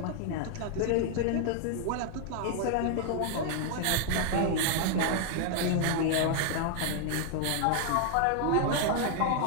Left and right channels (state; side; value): different; both; correlation 0.00